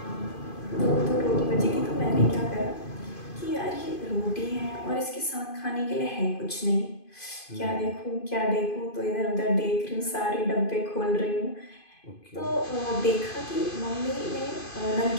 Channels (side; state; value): right; late; 2.5 ms